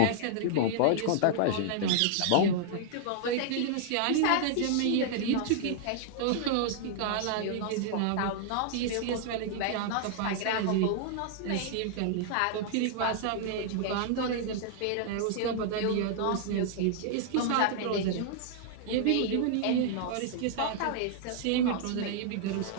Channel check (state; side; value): different; both; correlation -0.01